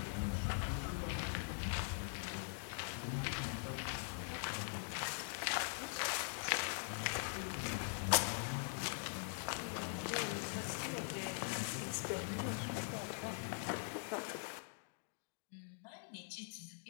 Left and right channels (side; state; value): right; silent; digital silence